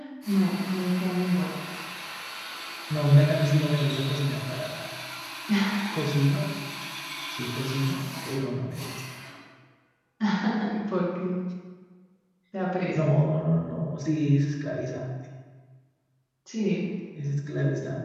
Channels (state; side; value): identical; both; correlation 1.00